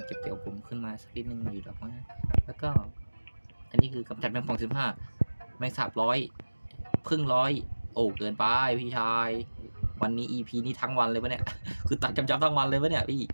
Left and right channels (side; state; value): both; inverted; correlation -1.00